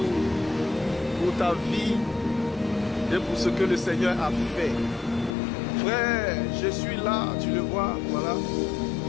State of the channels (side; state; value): right; drops out; at 5.3 s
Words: pour ta vie et pour ce que le Seigneur a fait. Frère, je suis là, tu le vois, voilà,